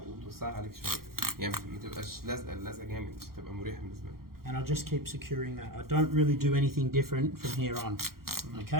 وتوسعها عليك شوية، يعني ما تبقاش لازقة جامد عشان تبقى مريحة بالنسبة لك. And I'll just keep securing that. I don't really do anything different from here on.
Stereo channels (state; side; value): late; left; 0.93 ms